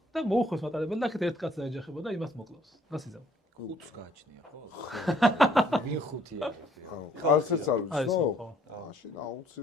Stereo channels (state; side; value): normal; both; correlation 0.63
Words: და მოუხვეს მატარებელი და აქეთ ერთ კაცს ეჯახება და იმას მოკლავს. რას იზამ? 5-ს გააჩნია ხო? ვინ 5-ია? არცერც არ ვიცნო? მაშინ